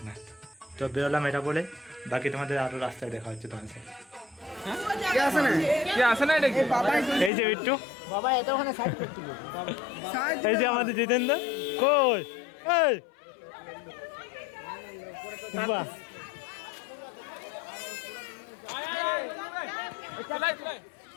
তো বেরোলাম এটা বলে, বাকি তোমাদের আরও রাস্তায় দেখা হচ্ছে তোমার সাথে। এই যে বিট্টু, এই যে আমাদের জিতেন্দ্র, কই এই বাহ,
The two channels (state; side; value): drops out; right; at 7.3 s